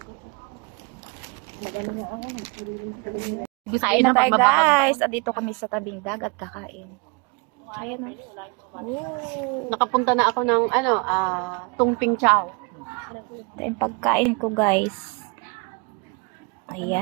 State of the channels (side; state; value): left; quieter; 31.1 dB